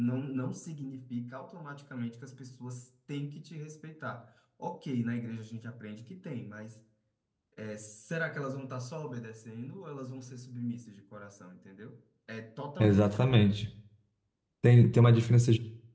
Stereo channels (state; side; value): identical; both; correlation 1.00